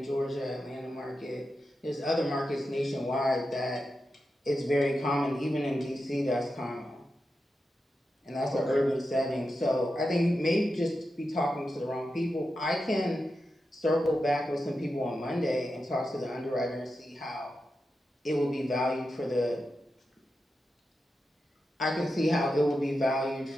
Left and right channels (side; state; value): both; normal; correlation 0.89